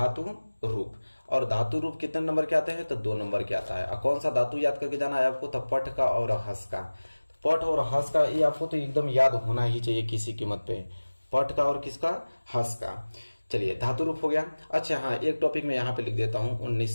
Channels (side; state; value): both; inverted; correlation -1.00